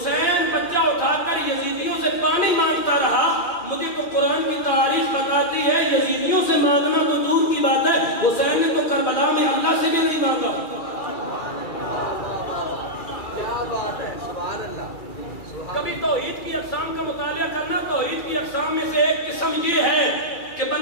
بچہ اٹھا کر یزیدیوں سے پانی مانگتا رہا. مجھے تو قرآن کی تاریخ بتاتی ہے یزیدیوں سے مانگنا تو دور کی بات ہے, حسین نے تو کربلا میں اللہ سے بھی نہیں مانگا. کیا بات ہے, سبحان اللہ. کبھی توحید کی اقسام کا مطالعہ کرنا. توحید کی اقسام میں سے ایک قسم یہ ہے کہ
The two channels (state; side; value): late; right; 2.4 ms